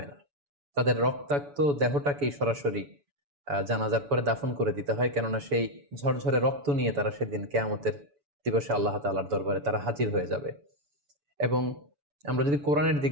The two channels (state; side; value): late; left; 7.0 ms